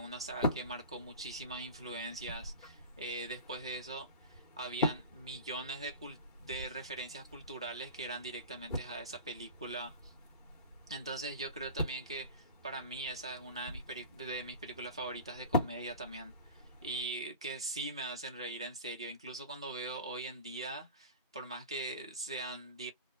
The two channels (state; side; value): inverted; both; correlation -0.33